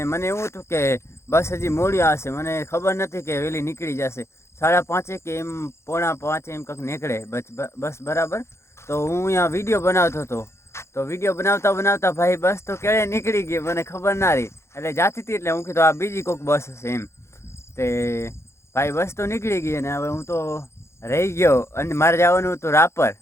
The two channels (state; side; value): late; right; 0.13 ms